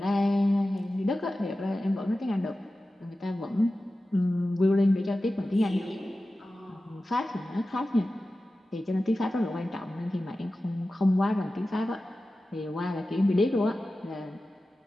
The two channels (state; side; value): normal; both; correlation 0.94